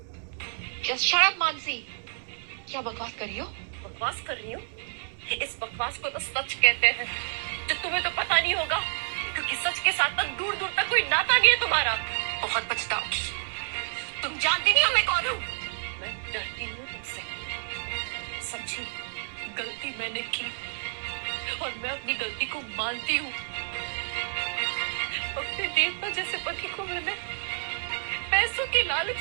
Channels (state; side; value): silent; left; digital silence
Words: Just shut up, Mansi. क्या बकवास कर रही हो? बकवास कर रही हूँ? इस बकवास को तो सच कहते हैं, जो तुम्हें तो पता नहीं होगा, क्योंकि सच के साथ तक दूर दूर तक कोई नाता नहीं है तुम्हारा। बहुत पछताओगी, तुम जानती नहीं हो मैं कौन हूँ। मैं डरती हूँ तुमसे, समझी? गलती मैंने की और मैं अपनी गलती को मानती हूँ। अपने देवता जैसे पति को मैंने पैसों के